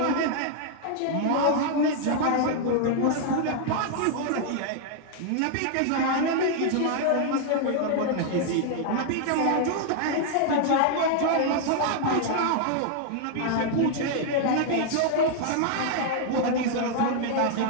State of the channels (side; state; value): both; different; correlation 0.00